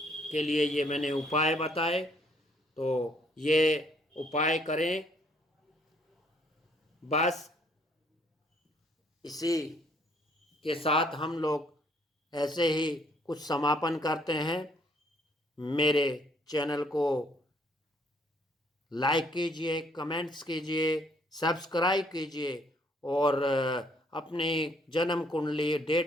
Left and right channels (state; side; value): normal; both; correlation 0.65